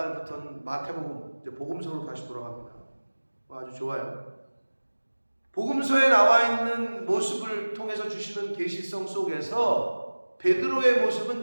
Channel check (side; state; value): both; inverted; correlation -1.00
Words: 마태복음, 이제 복음서로 다시 돌아갑니다. 아주 좋아요. 복음서에 나와 있는 모습을 통해서 주시는 계시성 속에서 베드로의